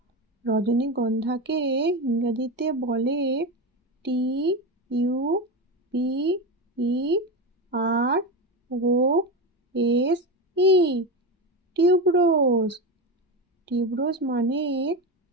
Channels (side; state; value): both; normal; correlation 0.17